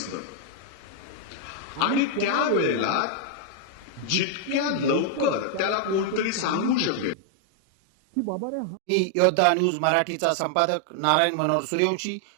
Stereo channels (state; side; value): drops out; left; at 7.2 s